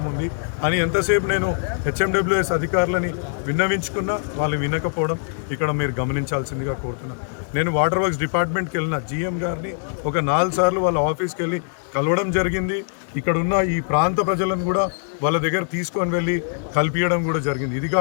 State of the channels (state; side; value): silent; right; 64 dB below the other